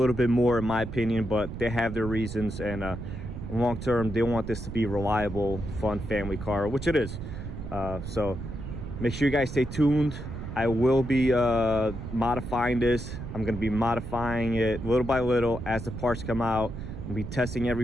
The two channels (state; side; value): noise; right; rumble, 8 dB below the sound